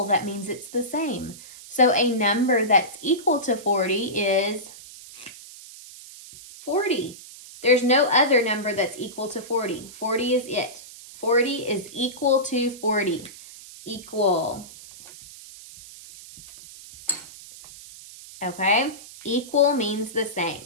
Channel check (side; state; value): right; noise; hiss, 17 dB below the sound